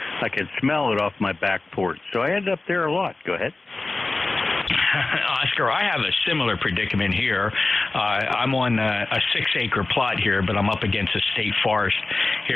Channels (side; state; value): right; quieter; 3.3 dB